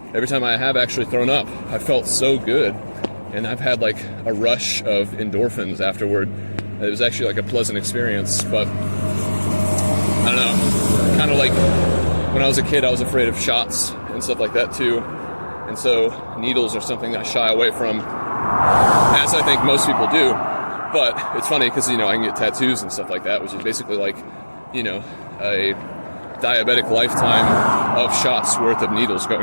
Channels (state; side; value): inverted; both; correlation -1.00